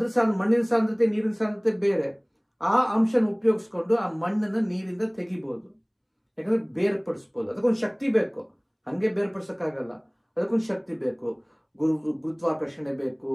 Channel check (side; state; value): both; identical; correlation 1.00